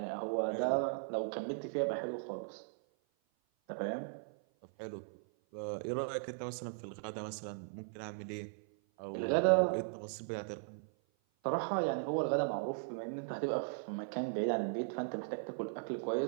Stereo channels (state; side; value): silent; left; 53 dB below the other